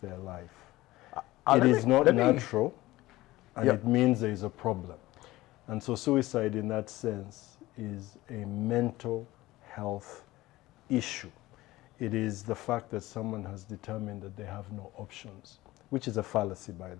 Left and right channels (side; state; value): right; quieter; 17.9 dB